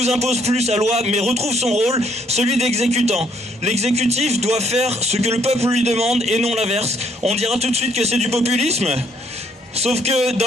impose plus sa loi mais retrouve son rôle, celui d'exécutant. L'exécutif doit faire ce que le peuple lui demande et non l'inverse. On dira tout de suite que c'est du populisme. Sauf que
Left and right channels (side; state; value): both; normal; correlation 0.67